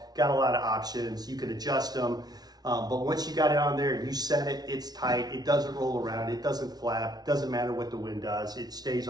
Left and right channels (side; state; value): left; late; 0.19 ms